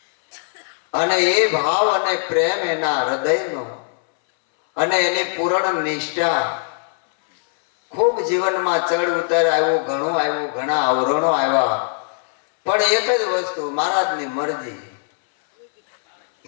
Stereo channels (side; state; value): right; silent; 66 dB below the other